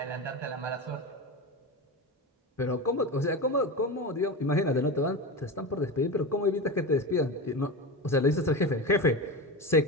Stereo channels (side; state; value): both; normal; correlation 0.23